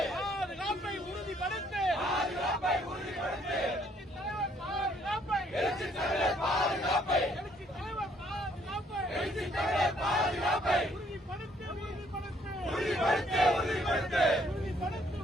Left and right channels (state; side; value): normal; both; correlation 0.66